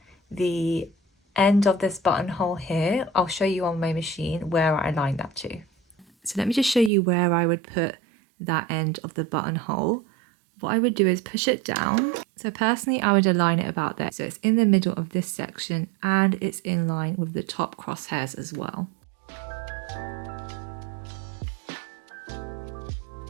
the end of this buttonhole here. I'll show you on my machine where I align that to. So let me just show you where I would put that end of the buttonhole. What I would do is push it down. So personally, I would align it about there. So it's in the middle of this section and it's in line with the top crosshairs as well.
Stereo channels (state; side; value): drops out; left; at 6.9 s